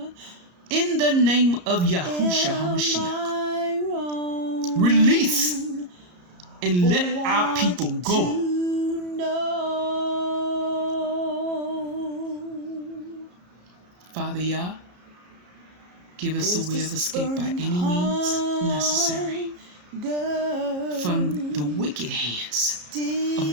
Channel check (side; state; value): left; late; 34 ms